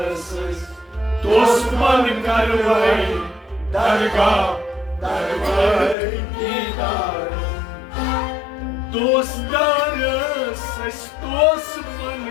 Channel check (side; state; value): right; drops out; at 6.0 s